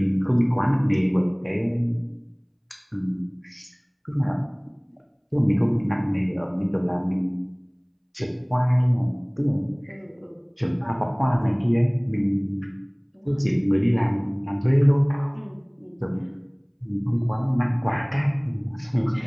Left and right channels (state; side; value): identical; both; correlation 1.00